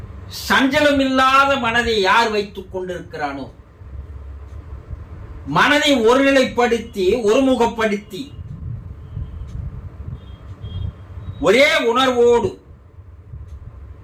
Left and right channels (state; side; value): identical; both; correlation 1.00